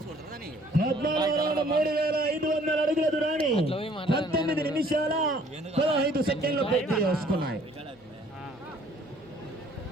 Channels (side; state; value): both; normal; correlation 0.58